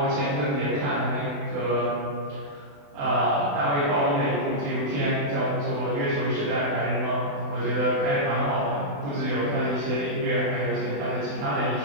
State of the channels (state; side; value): late; left; 28 ms